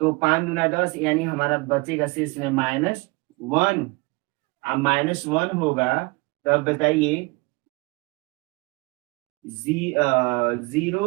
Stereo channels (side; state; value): left; quieter; 26.1 dB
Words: 5 दूना 10, यानी हमारा बचेगा शेष में -1। अब -1 होगा, तब बताइए